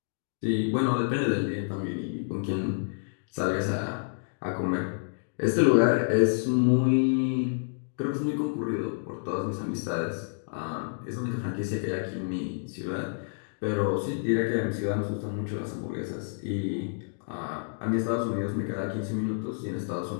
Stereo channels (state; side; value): silent; right; digital silence